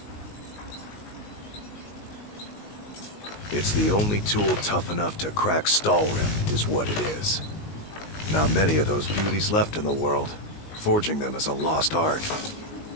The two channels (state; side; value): late; right; 19 ms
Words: It's the only tool tough enough to crack Skyrim, is what it is. Not many of those beauties left in the world. Forging them is a lost art.